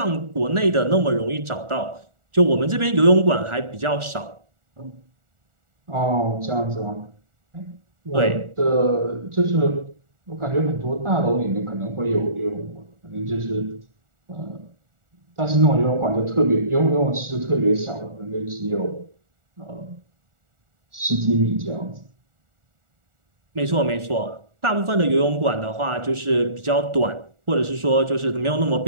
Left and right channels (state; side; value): late; left; 1.4 ms